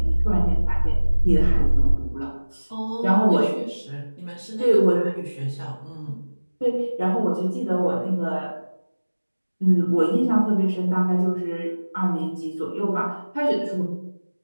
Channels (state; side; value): inverted; both; correlation -1.00